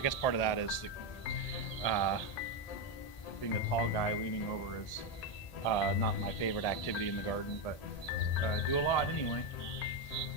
part of that is uh, being a tall guy leaning over is not my favorite activity in the garden, but do a lot anyway.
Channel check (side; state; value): right; late; 1.8 ms